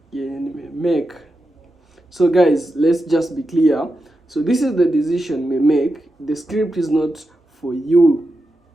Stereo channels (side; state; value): both; normal; correlation 0.89